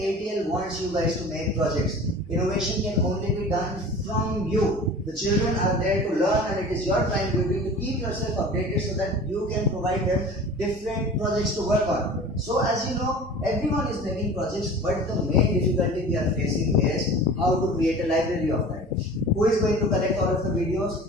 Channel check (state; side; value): normal; both; correlation 0.40